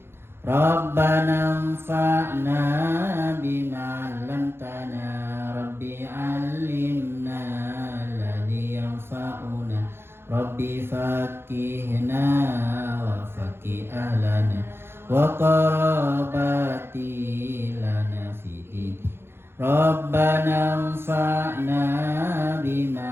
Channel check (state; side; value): late; left; 0.11 ms